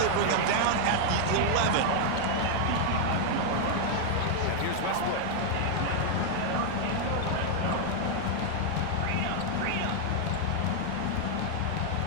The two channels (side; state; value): both; different; correlation 0.00